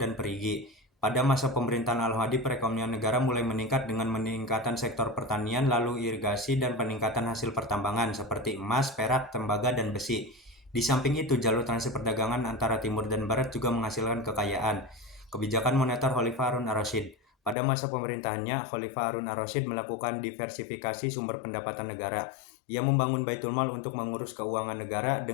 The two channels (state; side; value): drops out; right; at 17.6 s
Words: dan perigi. Pada masa pemerintahan Al-Hadi, perekonomian negara mulai meningkat dengan meningkatan sektor pertanian, lalu irigasi, dan peningkatan hasil pertambangan seperti emas, perak, tembaga, dan besi. Di samping itu, jalur transit perdagangan antara timur dan barat juga menghasilkan kekayaan. Kebijakan moneter Khalifah Harun ar-Rasyid. Pada masa pemerintahannya, Khalifah Harun ar-Rasyid melakukan diversifikasi sumber pendapatan negara. Ia membangun Baitul Mal untuk mengurus keuangan negara